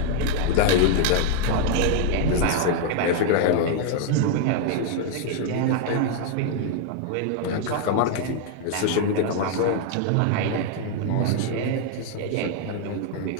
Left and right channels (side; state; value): both; different; correlation 0.00